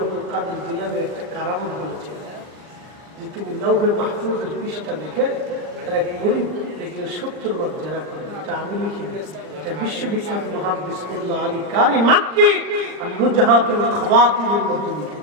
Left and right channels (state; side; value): late; left; 39 ms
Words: কাদের জিলানীর একটা কারামত বলেছিলাম, যে তিনি লৌহে মাহফুজের পৃষ্ঠা দেখে এক গরিব দেখলে 70 বার জেনা করে। এটা আমি লিখিনি, এটা বিশ্ববিখ্যাত মুহাদ্দিস মোল্লা আলী কারি মাক্কি আর নুজহাতুল খাওয়াতিরের মধ্যে